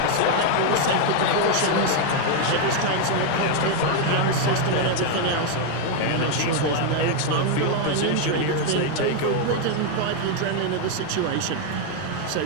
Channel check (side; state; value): both; different; correlation 0.01